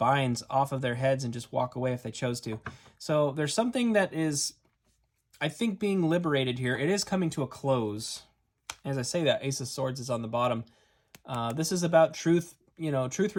off of their heads and just walk away if they chose to. So there's something that is, I think, being liberated here. It is coming to a close. As I say that, Ace of Swords is on the bottom. This is about truth, you know, truth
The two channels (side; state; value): both; identical; correlation 1.00